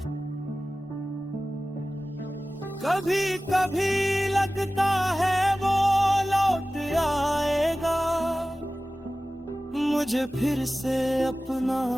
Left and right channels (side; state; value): both; normal; correlation 0.96